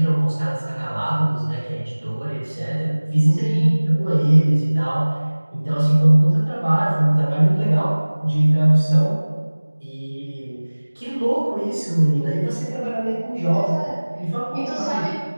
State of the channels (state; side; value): inverted; both; correlation -1.00